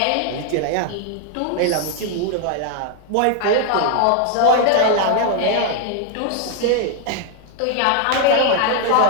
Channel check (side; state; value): both; different; correlation 0.00